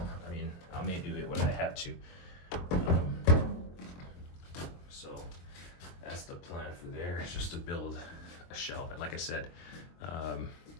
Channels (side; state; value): right; late; 23 ms